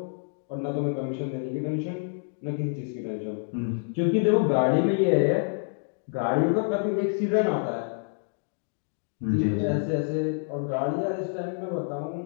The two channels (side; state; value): right; silent; digital silence